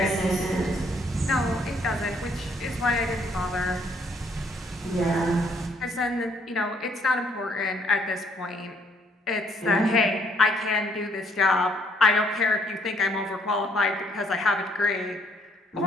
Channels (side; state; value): both; normal; correlation 0.67